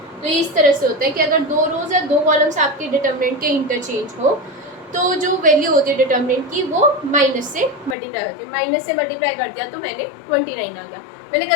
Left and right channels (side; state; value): right; drops out; at 8.0 s